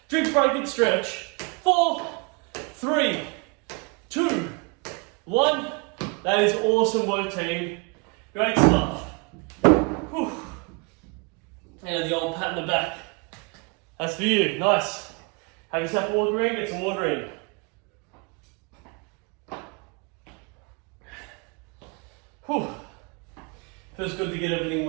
Drink, break, and stretch. 4, 3, 2, 1. That is awesome work, team. Great stuff. Whew. And the old pat in the back. That's for you. Nice. Have yourself a water in, get some water in. Whew. Feels good to get everything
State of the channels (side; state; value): left; quieter; 31.3 dB